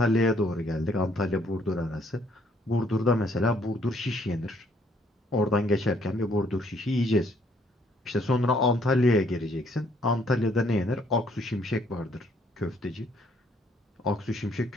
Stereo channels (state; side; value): normal; both; correlation 0.66